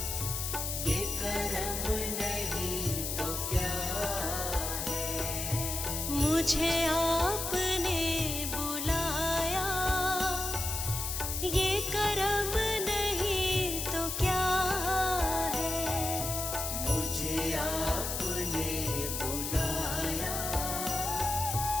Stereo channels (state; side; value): noise; left; hiss, 3 dB below the sound